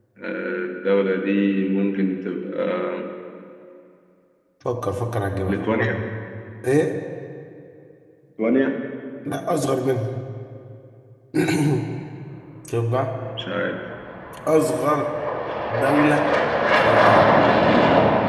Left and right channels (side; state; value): both; identical; correlation 1.00